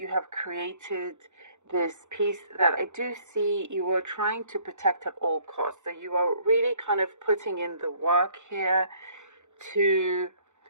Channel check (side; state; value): left; late; 0.84 ms